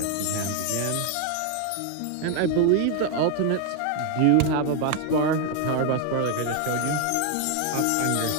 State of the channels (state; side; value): different; both; correlation 0.01